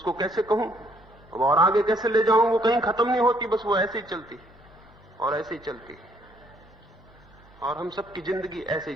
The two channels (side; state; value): both; normal; correlation 0.66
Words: कैसे कहूं अब और आगे कैसे ले जाऊं, वो कहीं खत्म नहीं होती, बस वो ऐसे ही चलती और ऐसे ही चलती। और हम सबकी जिंदगी ऐसे